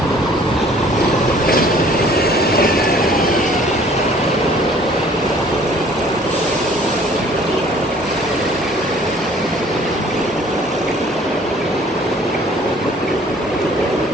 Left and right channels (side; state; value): both; normal; correlation 0.55